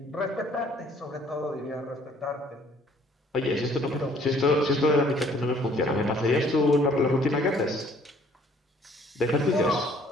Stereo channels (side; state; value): both; normal; correlation 0.59